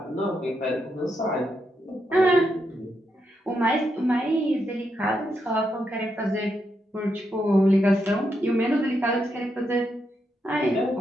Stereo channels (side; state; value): both; normal; correlation 0.82